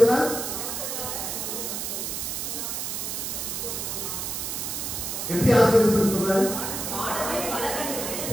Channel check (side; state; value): right; noise; hiss, 3 dB below the sound